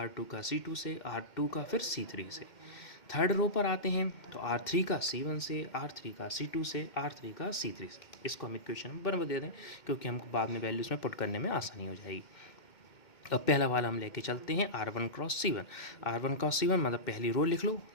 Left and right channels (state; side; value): late; right; 2.1 ms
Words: का C2 से, R2 का फिर C3 से। थर्ड रो पर आते हैं तो R3 का C1 से, R3 का C2 से, R3 का C3 से। इसको हम इक्वेशन में बराबर दे दें क्योंकि हमको बाद में वैल्यूज़ में पुट करने में आसानी हो जाएगी। अब पहला वाला हम लेके चलते हैं R1 cross C1, R1 cross C1 मतलब पहली रो लिख लो,